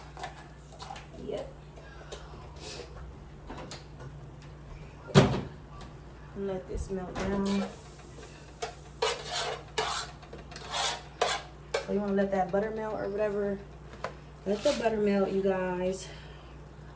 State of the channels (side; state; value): both; identical; correlation 1.00